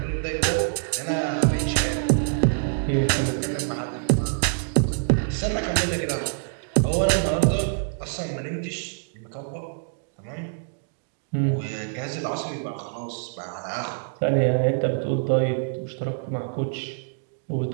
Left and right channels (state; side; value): silent; left; digital silence